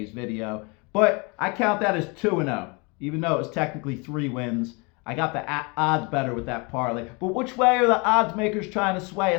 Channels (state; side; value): quieter; right; 30.2 dB